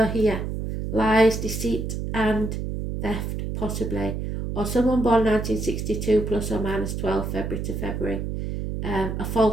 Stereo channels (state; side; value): noise; right; hum, 4 dB below the sound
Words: here. Lies, deceit and theft, possibly. Or someone born 1962 plus or minus 12 February to February. A